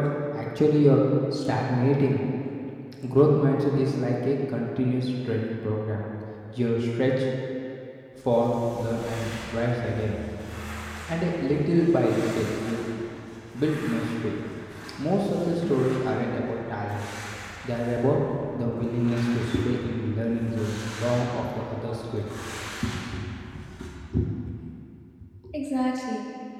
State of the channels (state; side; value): identical; both; correlation 1.00